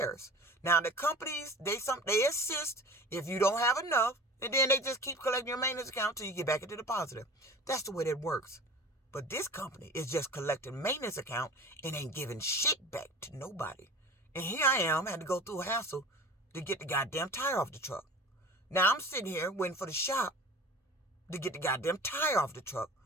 Now, the companies, they assist if you don't have enough, and then they just keep collecting your maintenance account till you get back into the positive. That's the way that works. But this company is just collecting maintenance account and ain't giving shit back to nobody. And here I am, had to go through a hassle to get the goddamn tire off the truck. Now I'm sitting here waiting for the shop to get the goddamn tire off the truck.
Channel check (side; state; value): both; normal; correlation 0.39